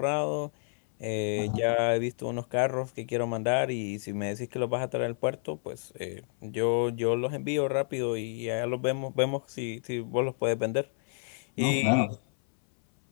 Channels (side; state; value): right; silent; 58 dB below the other